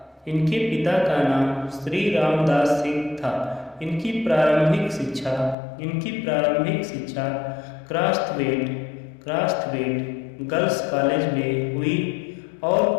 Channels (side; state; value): right; drops out; at 5.6 s